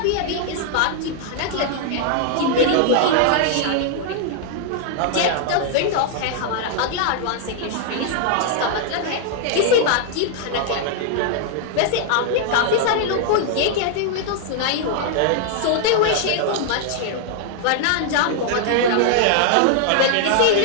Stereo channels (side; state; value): both; different; correlation 0.00